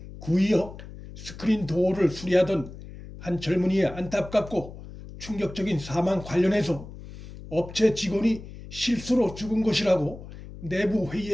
구의역 스크린 도어를 수리하던 한 젊은이의 안타깝고 충격적인 사망 관련해서 업체 직원이 실수로 죽은 것이라고 내부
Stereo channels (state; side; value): noise; left; hum, 14 dB below the sound